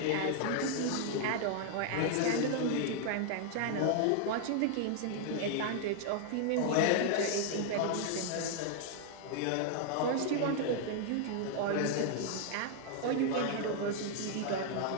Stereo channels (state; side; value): different; both; correlation 0.00